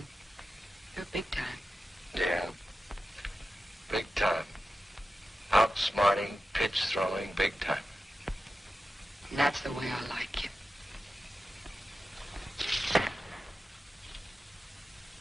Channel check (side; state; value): both; normal; correlation 0.93